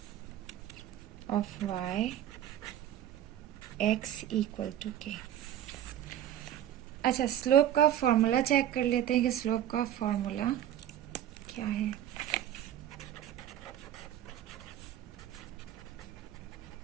of y x equal to k। अच्छा, स्लोप का फॉर्मूला चेक कर लेते हैं कि स्लोप का फॉर्मूला क्या है।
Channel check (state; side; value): quieter; left; 11.3 dB